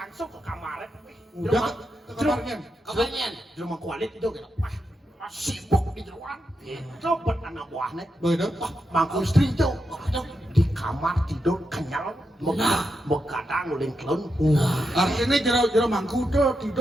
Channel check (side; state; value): both; normal; correlation 0.85